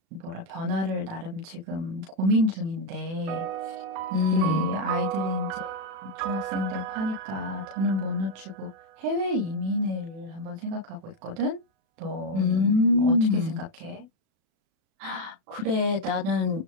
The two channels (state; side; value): late; left; 36 ms